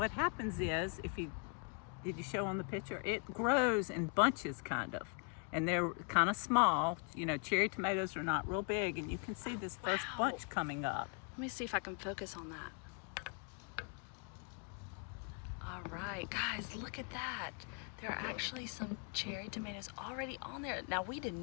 happens is, did you show on the picture? It grows in bunches, kind of. And they're kind of small. You know, cherry tomatoes are not real big, and you can see this first bunch coming up. Let me see if I can focus on that. All right, guys, look at that. There are actually some cherry tomatoes already on there. Now, we did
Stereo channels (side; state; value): right; quieter; 35.7 dB